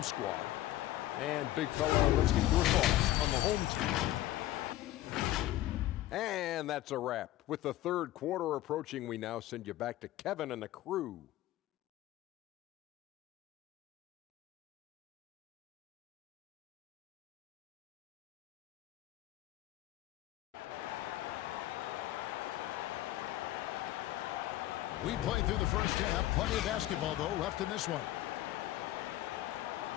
squad. And big fella, let's get your thoughts on the home team. And that's a wrap. With the third quarter approaching, we now send you back to Kevin and the crew. We played through the first half. Plenty of basketball, though, left in this one.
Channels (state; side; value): quieter; right; 14.9 dB